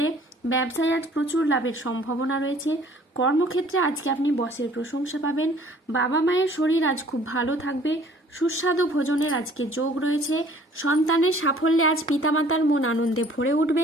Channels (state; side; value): normal; both; correlation 0.55